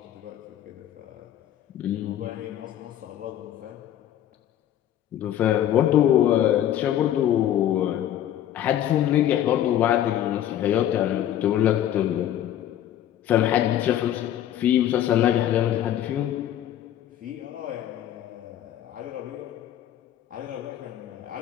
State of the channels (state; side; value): quieter; right; 11.5 dB